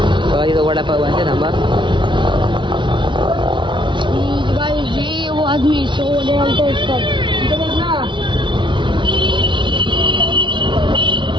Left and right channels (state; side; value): late; left; 0.24 ms